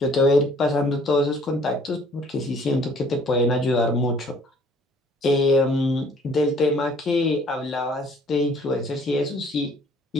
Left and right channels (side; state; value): both; normal; correlation 0.57